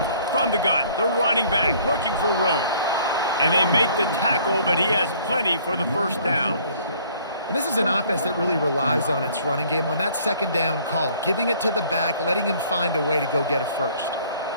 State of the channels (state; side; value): inverted; both; correlation -0.57